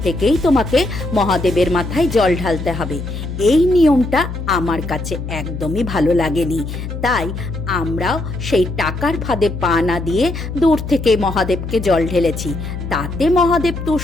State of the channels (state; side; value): noise; left; hum, 7 dB below the sound